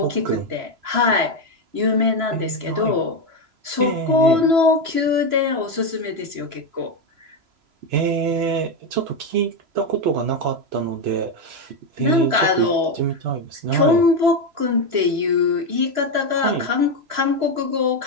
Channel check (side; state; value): left; late; 3.0 ms